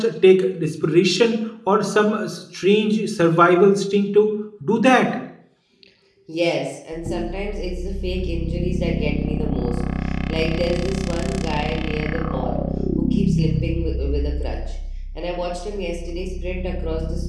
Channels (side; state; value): both; identical; correlation 1.00